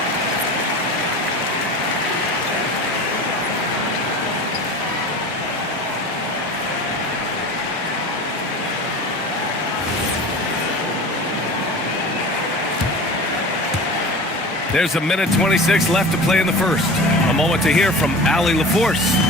There's a minute 26 left to play in the first. A moment to hear from Allie LaForce.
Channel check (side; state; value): both; normal; correlation 0.36